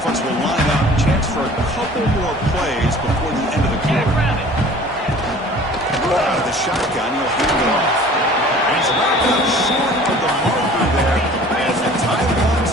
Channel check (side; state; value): both; normal; correlation 0.47